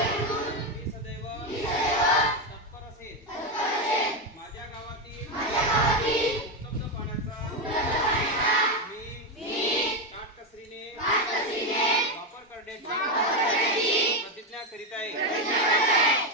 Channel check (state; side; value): normal; both; correlation 0.09